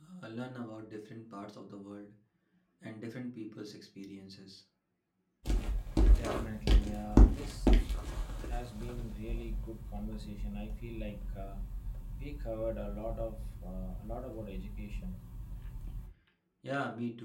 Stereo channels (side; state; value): both; identical; correlation 1.00